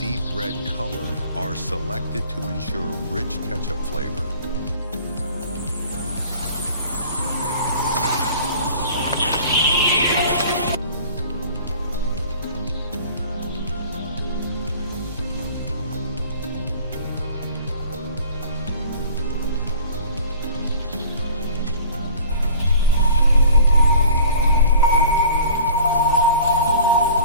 deep red color are selected to ensure rich ketchup flavor.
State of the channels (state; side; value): inverted; both; correlation -0.47